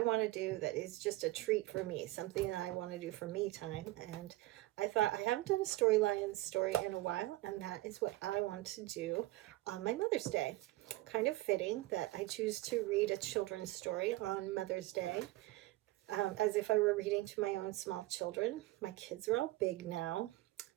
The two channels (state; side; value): quieter; left; 18.5 dB